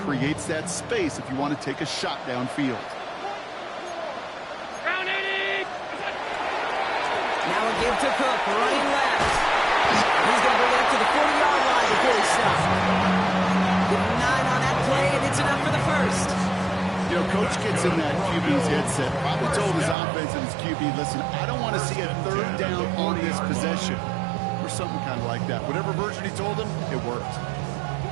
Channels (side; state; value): left; drops out; at 20.0 s